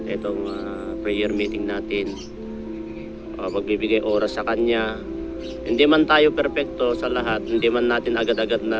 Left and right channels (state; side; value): identical; both; correlation 1.00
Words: itong prayer meeting natin, pagbibigay oras sa Kanya. Hindi man tayo perpekto sa lahat, hindi man natin agad-agad na